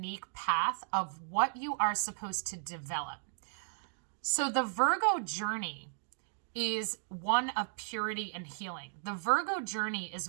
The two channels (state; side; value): silent; left; digital silence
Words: path of what you are supposed to develop. So the Virgo journey is one of purity and healing. The Virgo journey is